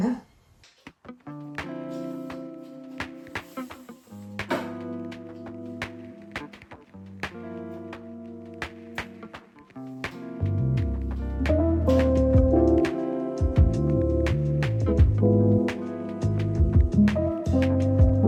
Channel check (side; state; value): both; identical; correlation 1.00